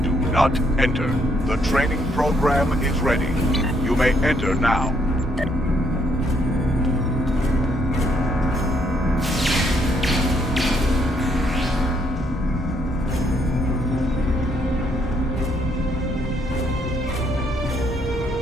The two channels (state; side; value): normal; both; correlation 0.71